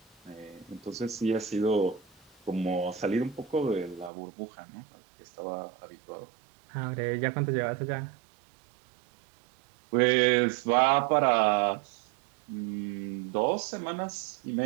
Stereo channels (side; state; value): left; drops out; at 4.1 s